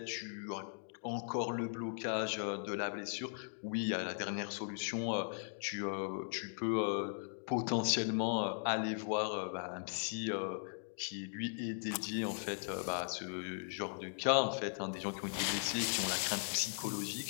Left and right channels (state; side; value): silent; right; digital silence